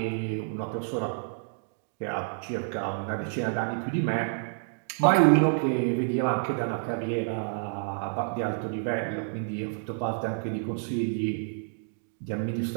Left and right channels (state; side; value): silent; left; digital silence